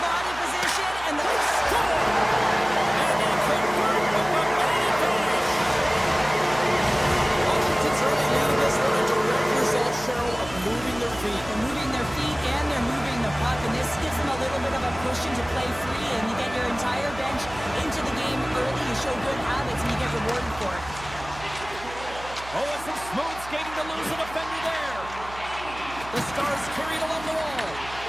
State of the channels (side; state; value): right; noise; hum, 15 dB below the sound